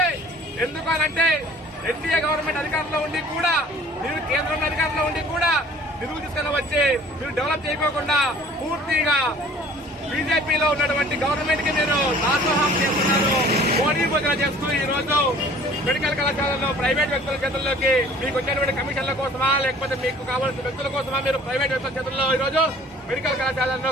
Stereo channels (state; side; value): normal; both; correlation 0.50